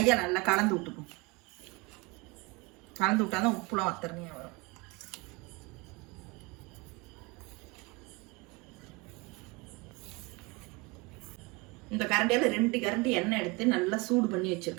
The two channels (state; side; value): quieter; left; 26.1 dB